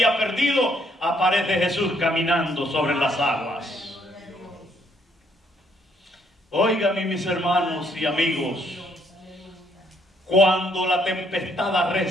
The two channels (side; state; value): both; normal; correlation 0.69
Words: perdido, aparece Jesús caminando sobre las aguas. Óigame, mis hermanos y amigos, cuando la tempestad